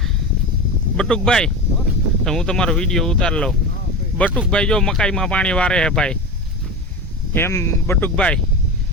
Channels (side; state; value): both; normal; correlation 0.25